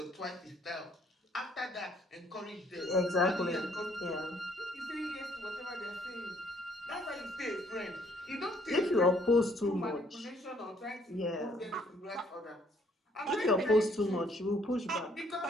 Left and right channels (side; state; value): both; normal; correlation 0.65